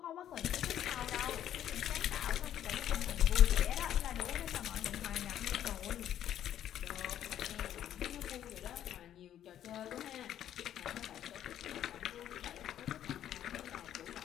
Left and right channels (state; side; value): quieter; right; 10.9 dB